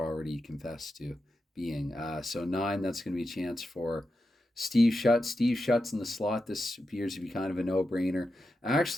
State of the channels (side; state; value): both; normal; correlation 0.89